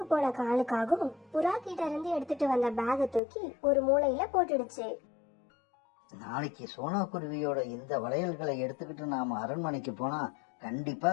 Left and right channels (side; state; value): right; drops out; at 3.2 s